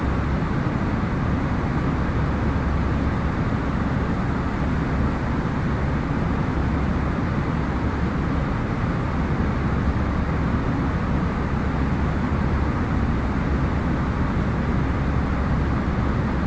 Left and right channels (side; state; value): both; identical; correlation 1.00